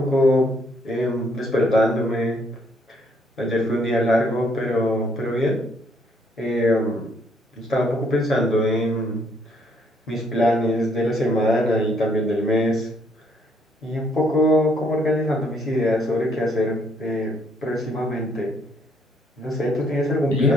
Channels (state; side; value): normal; both; correlation 0.68